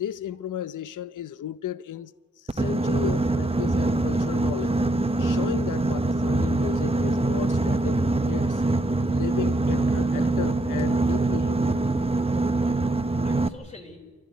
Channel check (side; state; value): both; normal; correlation 0.76